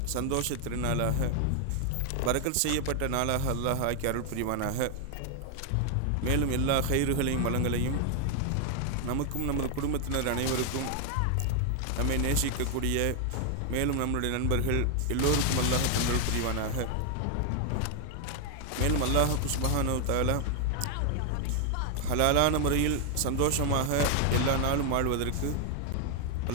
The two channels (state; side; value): different; both; correlation 0.00